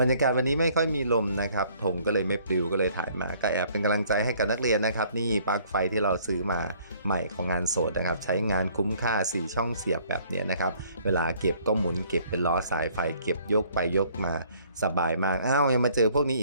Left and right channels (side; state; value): both; inverted; correlation -0.60